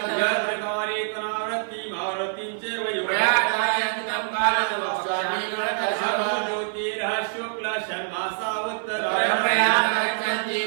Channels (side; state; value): left; silent; digital silence